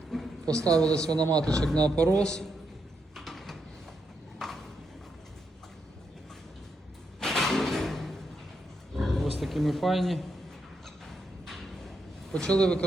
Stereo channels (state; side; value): normal; both; correlation 0.82